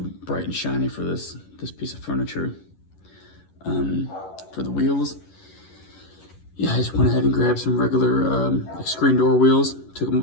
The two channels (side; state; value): right; late; 11 ms